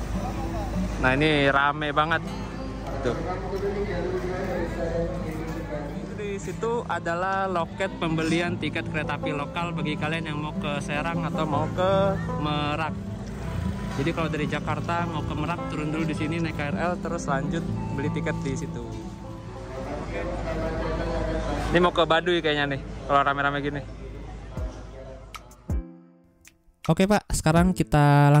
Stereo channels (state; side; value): identical; both; correlation 1.00